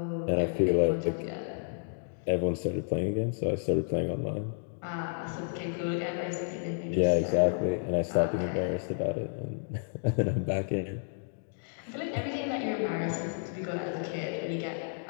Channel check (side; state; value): right; silent; digital silence